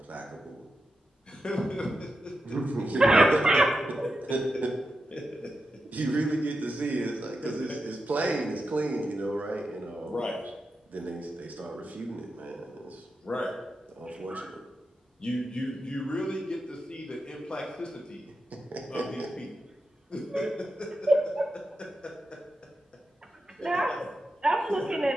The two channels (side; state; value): both; normal; correlation 0.88